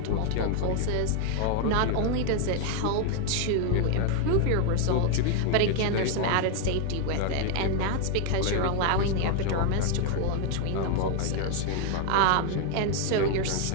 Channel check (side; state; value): both; different; correlation 0.00